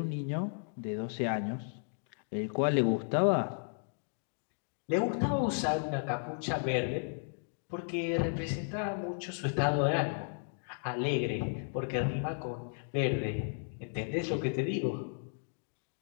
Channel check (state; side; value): silent; right; digital silence